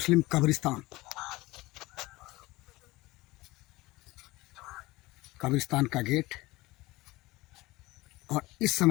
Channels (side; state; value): right; quieter; 20.3 dB